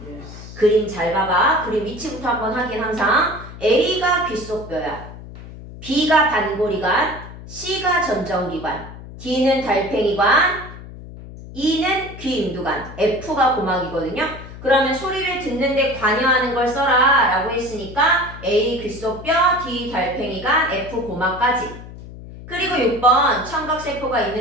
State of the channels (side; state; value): left; noise; hum, 14 dB below the sound